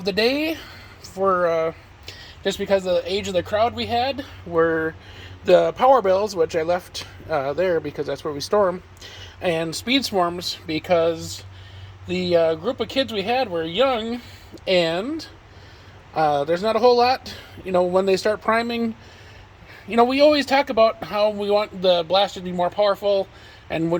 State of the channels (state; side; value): identical; both; correlation 1.00